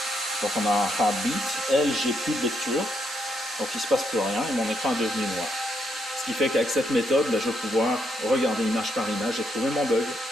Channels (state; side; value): normal; both; correlation 0.77